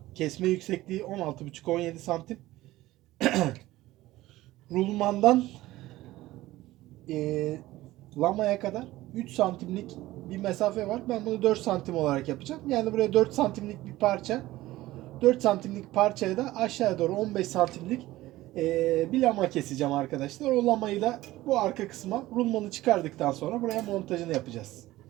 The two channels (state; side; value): quieter; left; 16.9 dB